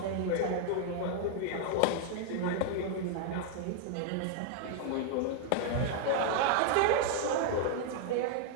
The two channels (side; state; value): both; different; correlation -0.01